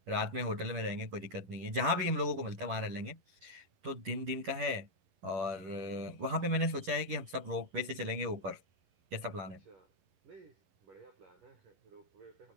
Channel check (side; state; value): left; late; 11 ms